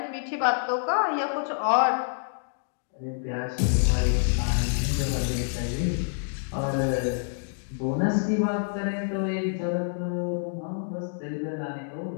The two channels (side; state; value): right; silent; digital silence